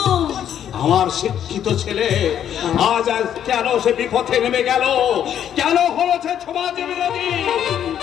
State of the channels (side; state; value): right; quieter; 9.8 dB